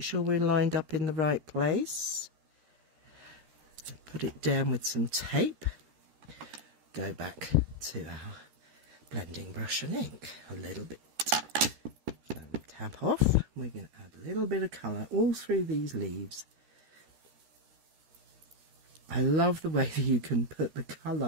we're lined up in the right place. So put it down with some tape. Go back to our blending brush and ink a little bit. Tap off. We're going to add a little bit of colour all through these leaves. I love the way that you can put the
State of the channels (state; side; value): late; left; 13 ms